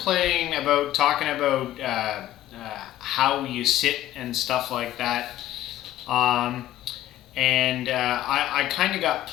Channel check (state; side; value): quieter; right; 13.7 dB